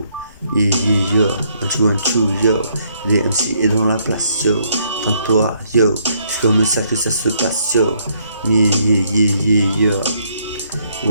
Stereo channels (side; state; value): both; inverted; correlation -0.69